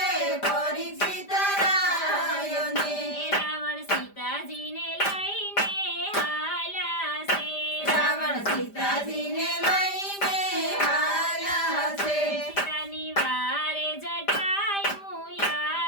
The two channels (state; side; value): late; right; 5.0 ms